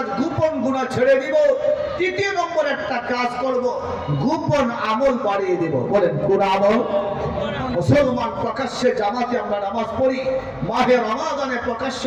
গোপন গুনাহ ছেড়ে দিব। তৃতীয় নম্বর একটা কাজ করব, গোপন আমল বাড়িয়ে দেব। বলেন কোন আমল? মুসলমান প্রকাশ্যে জামাতে আমরা নামাজ পড়ি, মাহে রমাদানে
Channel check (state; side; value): identical; both; correlation 1.00